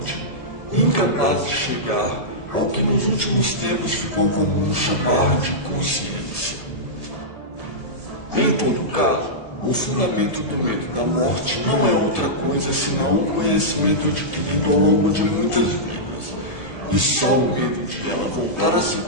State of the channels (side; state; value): right; late; 1.7 ms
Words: incapaz de chegar ao que nos últimos tempos ficou comum chamar de consciência. Em todo caso, o fundamento do medo da morte não é outra coisa senão um conhecimento adquirido ao longo de muitas vidas, e só o medo de ela voltar a se